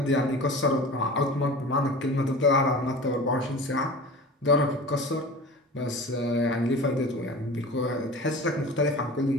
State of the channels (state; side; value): normal; both; correlation 0.36